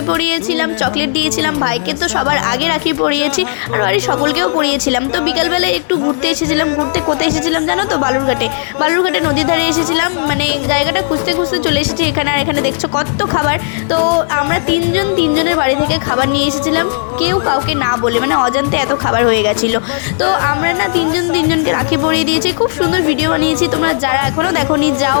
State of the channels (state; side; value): silent; right; digital silence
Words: পরিয়েছিলাম, চকলেট দিয়েছিলাম, ভাইকে তো সবার আগে রাখি পরিয়েছি, আর বাড়ির সকলকেও পরিয়েছিলাম। তো বিকালবেলায় একটু ঘুরতে এসেছিলাম। ঘুরতে কোথায় এসেছিলাম জানো তো? বালুরঘাটে নদীর ধারে এসেছিলাম। মানে জায়গাটা খুঁজতে খুঁজতে চলে এসেছি এখানে। আর এখানে দেখছো কত খাবার। তো আমরা তিনজনের বাড়ি থেকে খাবার নিয়ে এসেছিলাম, কেউ কাউকে না বলে, মানে অজান্তে এত খাবার হয়ে গেছিলো। তো আমরা না তিনজনকে রাখি পরিয়ে দিয়েছি। খুব সুন্দর ভিডিও বানিয়েছি। তোমরা যারা এখনও দেখোনি যাও,